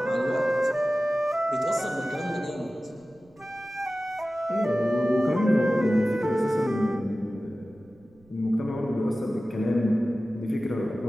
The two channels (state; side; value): noise; right; rumble, 29 dB below the sound